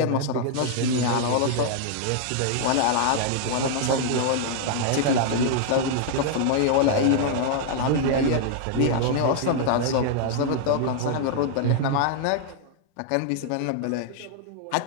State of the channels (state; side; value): different; both; correlation 0.00